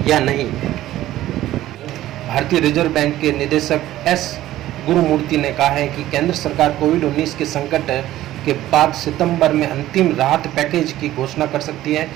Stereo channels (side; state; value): left; quieter; 14.4 dB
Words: या नहीं। भारतीय रिजर्व बैंक के निदेशक एस गुरुमूर्ति ने कहा है कि केंद्र सरकार कोविड-19 के संकट के बाद सितंबर में अंतिम राहत पैकेज की घोषणा कर सकती है।